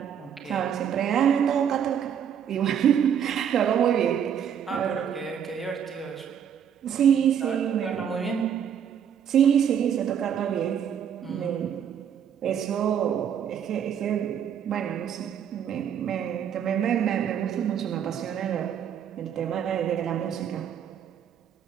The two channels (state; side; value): quieter; left; 8.6 dB